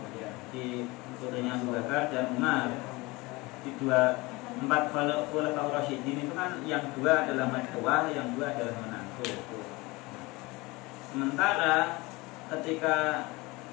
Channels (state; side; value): quieter; right; 23.1 dB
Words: di putrinya Abu Bakar dan Umar. Di empat khulafaur rasyidin itu kan yang dua adalah mertua, yang dua adalah menantu. Sementara ketika